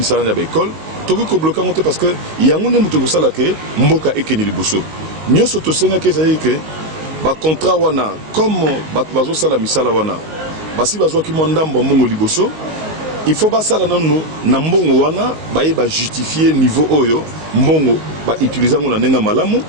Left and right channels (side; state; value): left; late; 19 ms